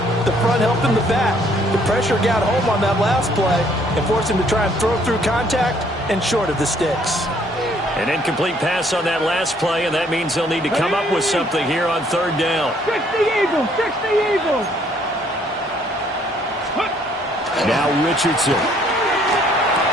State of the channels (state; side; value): normal; both; correlation 0.64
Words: helping the back. The pressure got home on that last play and forced him to try and throw through contact and short of the sticks. An incomplete pass on that last play, and that means they'll need to come up with something here on 3rd down. 60 Eagles, 60 Eagles. Now Richardson.